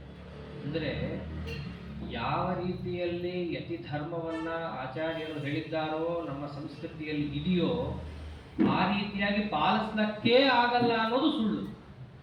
ಅಂದರೆ ಯಾವ ರೀತಿಯಲ್ಲಿ ಯತಿ ಧರ್ಮವನ್ನ ಆಚಾರ್ಯರು ಹೇಳಿದ್ದಾರೋ ನಮ್ಮ ಸಂಸ್ಕೃತಿಯಲ್ಲಿ ಇದೆಯೋ ಆ ರೀತಿಯಾಗಿ ಪಾಲಿಸ್ಲಿಕ್ಕೇ ಆಗಲ್ಲ ಅನ್ನೋದು ಸುಳ್ಳು.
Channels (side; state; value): both; identical; correlation 1.00